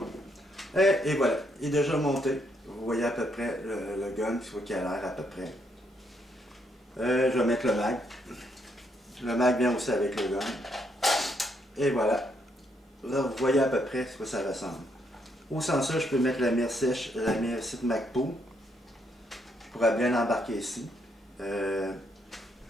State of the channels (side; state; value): both; normal; correlation 0.74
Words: Et voilà. Il est déjà monté. Vous voyez à peu près le gun, il faut qu'il a l'air à peu près. Je vais mettre le mag. Le mag vient aussi avec le gun. Et voilà. Là, vous voyez à peu près ce que ça ressemble. Au sens ça, je peux mettre la mire sèche, la mire site Magpul. Je pourrais bien l'embarquer ici. Je